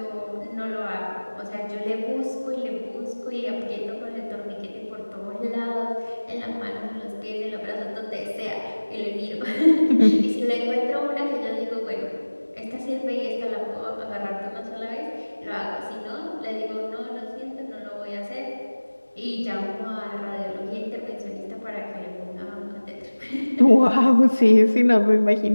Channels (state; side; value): inverted; both; correlation -1.00